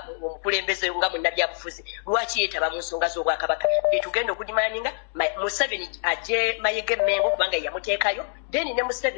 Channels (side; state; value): right; silent; digital silence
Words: omukulembeze nga munnabyabufuzi lwaki yeetaba mu nsonga z'obwakabaka tugenda okudimaninga Museveni ajje Mayege Mengo kubanga yamuteekayo then ne